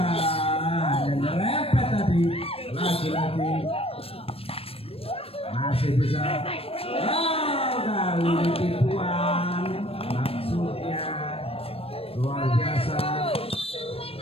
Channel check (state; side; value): late; right; 0.28 ms